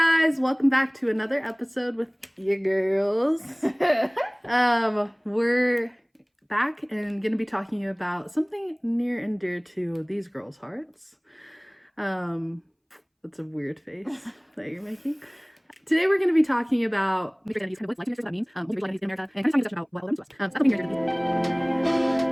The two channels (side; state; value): both; identical; correlation 1.00